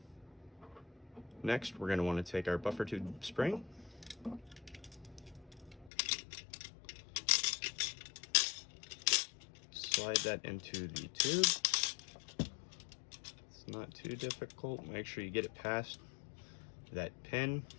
Next, we're going to want to take our buffer tube spring, slide that into the tube. It's not too difficult. Make sure you get it past that pin.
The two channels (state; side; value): drops out; right; at 5.9 s